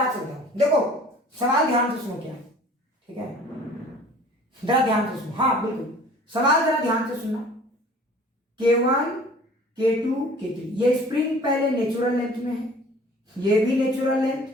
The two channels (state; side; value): normal; both; correlation 0.48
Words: चलता हूं। देखो सवाल ध्यान से सुनो क्या है, ठीक है, जरा ध्यान से सुनो। हाँ बिल्कुल, सवाल जरा ध्यान से सुनना। K1 K2 K3, ये स्प्रिंग पहले नेचुरल लेंथ में है, ये भी नेचुरल लेंथ,